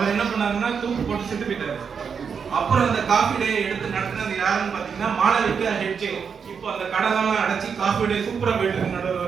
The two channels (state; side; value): quieter; left; 6.4 dB